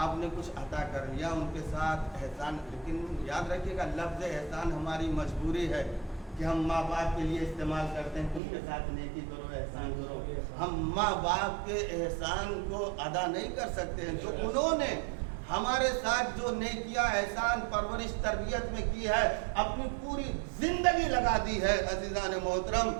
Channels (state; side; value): drops out; left; at 8.4 s